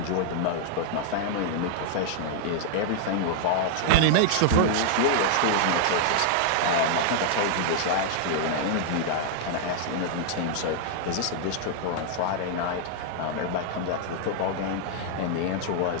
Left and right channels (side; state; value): both; different; correlation -0.01